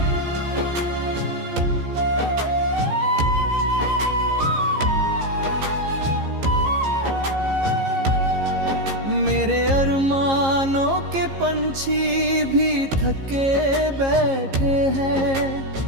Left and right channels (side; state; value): left; late; 15 ms